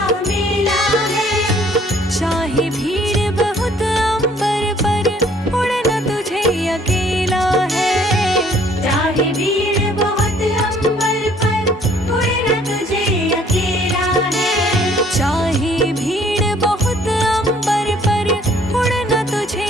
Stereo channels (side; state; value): both; normal; correlation 0.59